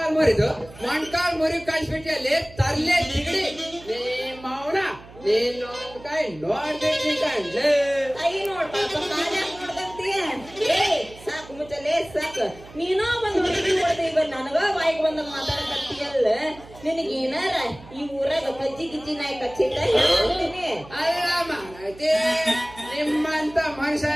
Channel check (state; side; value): noise; right; hum, 20 dB below the sound